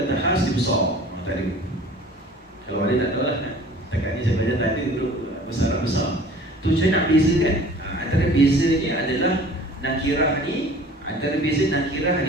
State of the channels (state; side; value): normal; both; correlation 0.47